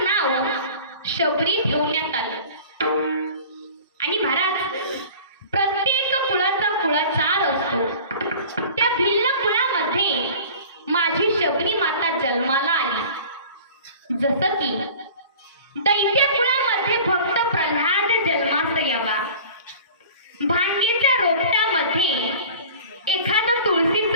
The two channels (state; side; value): inverted; both; correlation -0.42